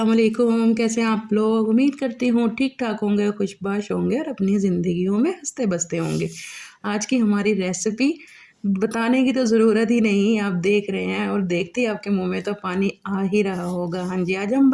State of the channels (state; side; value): identical; both; correlation 1.00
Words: वालेकुम, कैसे हैं आप लोग? उम्मीद करती हूँ ठीक-ठाक होंगे, खुशबाश होंगे और अपनी ज़िंदगियों में हँसते-बसते होंगे। आज की हमारी रेसिपी बताने की तो ज़रूरत ही नहीं, आप देख रहे हैं और देखते ही आपके मुँह में तो पानी आ ही रहा होगा। हाँ जी, आज हम